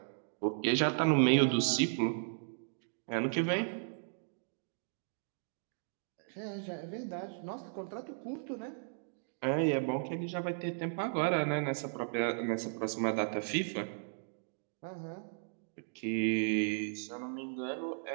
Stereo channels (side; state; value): left; silent; digital silence